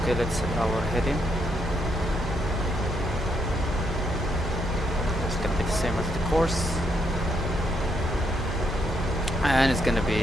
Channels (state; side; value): normal; both; correlation 0.76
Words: Okay, let's set our heading. It's gonna be the same as the course, and it's gonna be